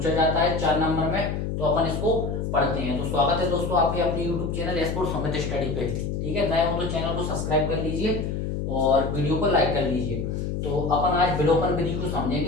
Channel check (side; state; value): left; noise; hum, 3 dB below the sound